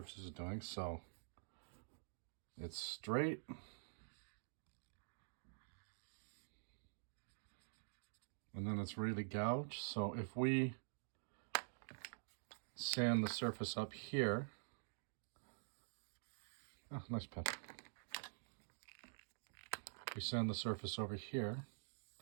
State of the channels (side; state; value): left; silent; digital silence